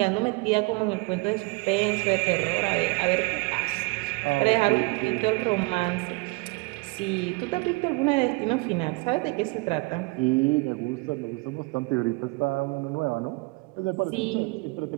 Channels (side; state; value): left; quieter; 27.3 dB